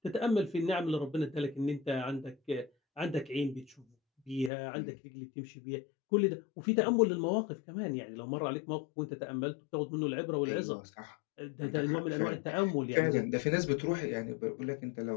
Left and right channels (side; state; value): right; drops out; at 4.5 s